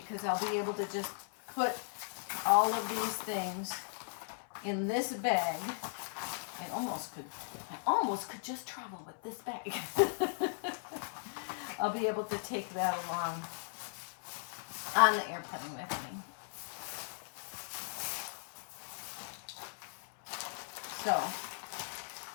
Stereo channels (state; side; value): silent; right; 53 dB below the other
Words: I'll be able to just put all of these things in this bag. I almost could just travel with this bag. I'll be able to take that along on the airplane with me. So,